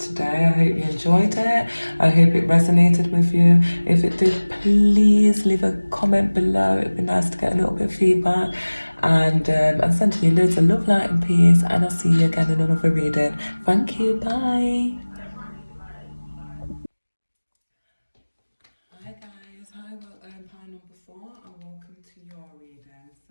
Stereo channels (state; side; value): inverted; both; correlation -1.00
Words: I hope you enjoyed it. I hope it resonated with you. If it did, please leave a comment below. It'd be nice to get a little bit of feedback. And I'm sending you loads of love, light, and peace. And I'll see you again in another reading. Thank you. Bye. Hi, guys. Hi, pile number 4, and welcome to your reading.